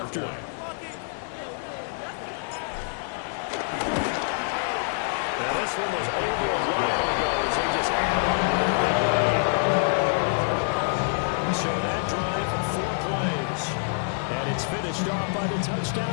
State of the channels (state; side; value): silent; right; digital silence